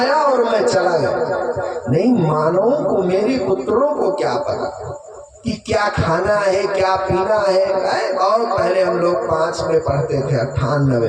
और मैं चला गया। नहीं मानो को मेरे पुत्रों को क्या पता कि क्या खाना है क्या पीना है। और पहले हम लोग 5 में पढ़ते थे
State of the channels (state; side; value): identical; both; correlation 1.00